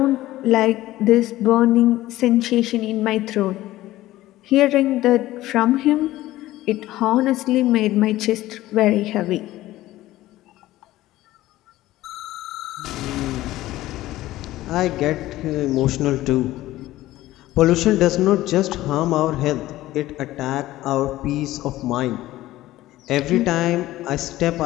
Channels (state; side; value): quieter; right; 16.0 dB